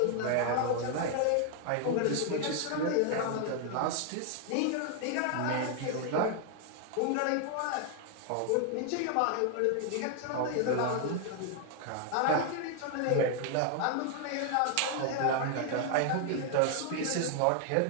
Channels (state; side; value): different; both; correlation 0.00